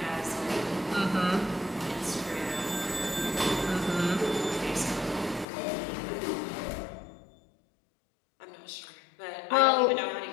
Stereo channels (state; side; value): drops out; right; at 5.5 s